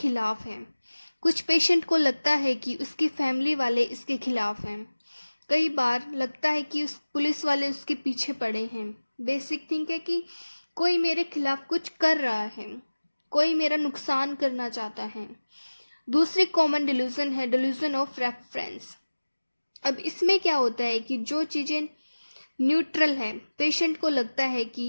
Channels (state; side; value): inverted; both; correlation -1.00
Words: है। कुछ पेशेंट को लगता है कि उसकी फैमिली वाले इसके खिलाफ हैं। कई बार लगता है कि उस पुलिस वाले उसके पीछे पड़े हैं। बेसिक थिंक है कि कोई मेरे खिलाफ कुछ कर रहा है, कोई मेरा नुकसान करना चाहता है। दूसरी कॉमन डिल्यूजन है डिल्यूजन ऑफ रेफरेंस। अब इसमें क्या होता है कि जो चीज़ें न्यूट्रल है, पेशेंट को लगता है